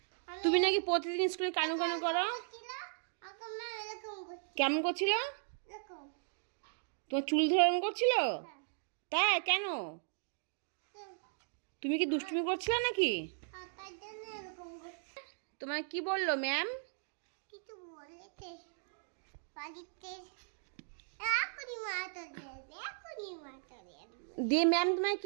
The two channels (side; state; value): left; silent; digital silence